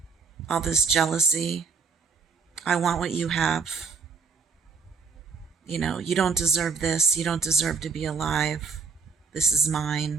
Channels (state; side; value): quieter; left; 5.4 dB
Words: all this jealousy? I want what you have. You know, you don't deserve this. You don't deserve to be alive. This is